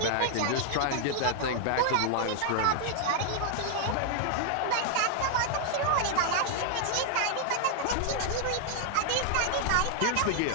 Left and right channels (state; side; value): different; both; correlation 0.00